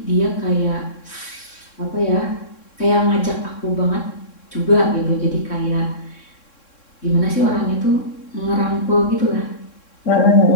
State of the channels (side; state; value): right; late; 3.6 ms